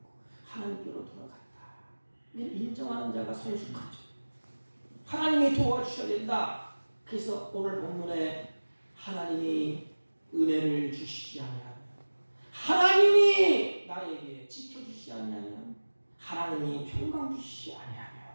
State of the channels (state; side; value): inverted; both; correlation -1.00